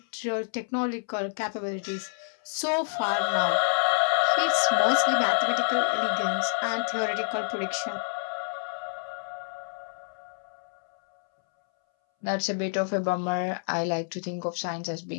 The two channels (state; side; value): silent; right; 59 dB below the other